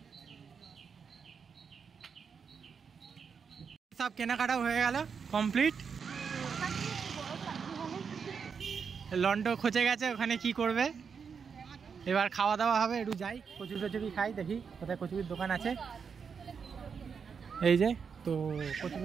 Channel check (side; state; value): left; quieter; 6.2 dB